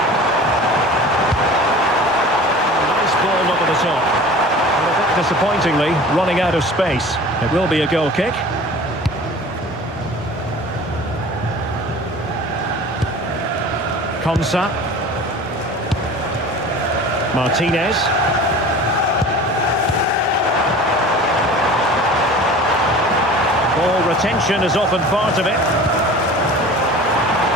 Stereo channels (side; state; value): both; normal; correlation 0.41